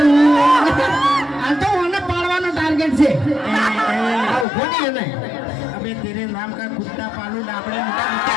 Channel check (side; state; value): right; drops out; at 4.5 s